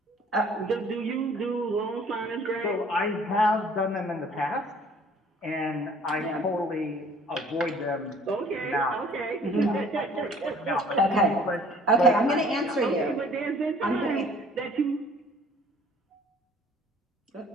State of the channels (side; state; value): both; normal; correlation 0.54